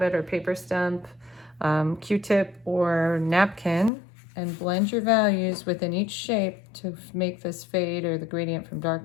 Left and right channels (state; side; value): drops out; right; at 3.9 s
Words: it, or paper stump, Q-tip or napkin, and blend your values within each shape to make this fade or the gradient from